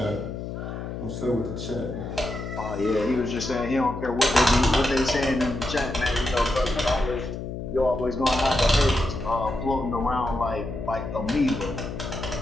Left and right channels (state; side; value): noise; left; hum, 7 dB below the sound